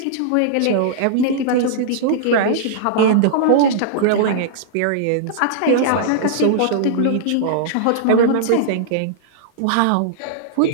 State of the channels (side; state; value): both; different; correlation -0.02